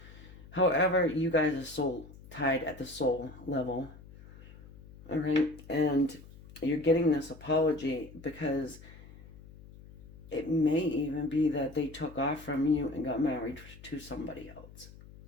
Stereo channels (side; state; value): left; noise; hum, 19 dB below the sound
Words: However, you guys are soul tied at the soul level, all right? And you're getting this apology because it may even be that they took off from you and got married to somebody else.